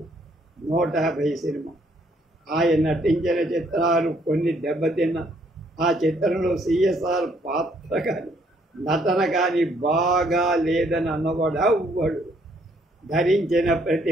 150 సినిమా. ఆయన నటించిన చిత్రాలు కొన్ని దెబ్బతిన్న. ఆ చిత్రంలో సిఎస్ఆర్ పాత్ర కానీ నటన కానీ బాగా లేదని అన్నవాడు అవ్వడు. ధరించిన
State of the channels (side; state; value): both; normal; correlation 0.67